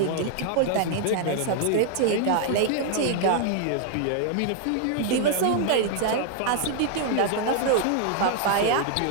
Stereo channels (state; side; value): different; both; correlation 0.00